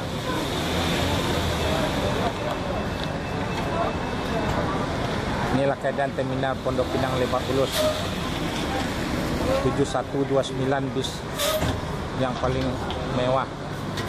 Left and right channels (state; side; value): identical; both; correlation 1.00